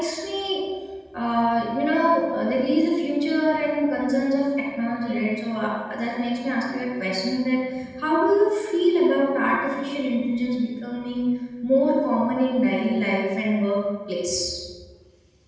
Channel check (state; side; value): identical; both; correlation 1.00